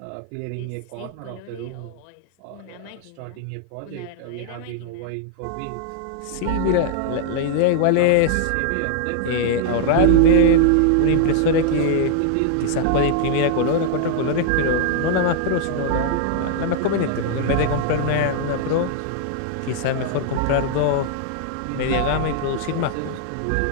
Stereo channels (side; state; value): both; different; correlation -0.01